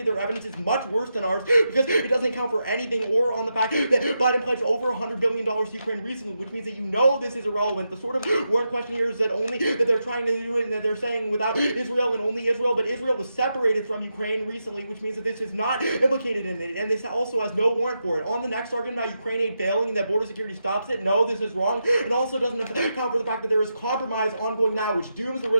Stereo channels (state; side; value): inverted; both; correlation -0.86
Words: Their evidence is much worse than ours because it doesn't account for anything or on the fact that Biden pledged over $100 billion to Ukraine recently, which means that you know this is irrelevant. The sort of warrant question here is that they're trying to do it and that they're saying without Israel and only Israel, but Israel was separated from Ukraine recently, which means that this is not implicated in it, and this also has no warrant for it. On the next argument about Ukraine aid failing and that border security stops it, no, this is wrong. It also doesn't account for the fact that there is compromise ongoing now, which dooms the